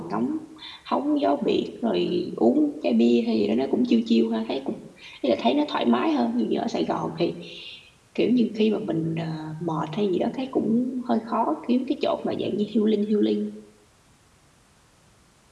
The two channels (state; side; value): identical; both; correlation 1.00